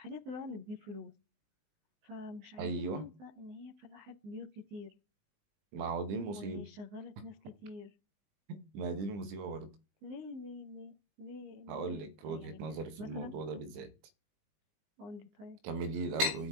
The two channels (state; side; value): late; left; 20 ms